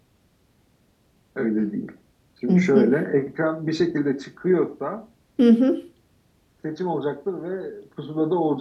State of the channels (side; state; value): both; identical; correlation 1.00